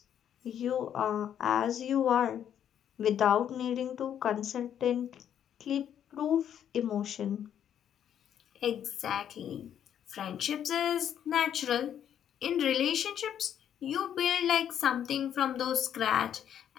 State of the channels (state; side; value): quieter; right; 9.6 dB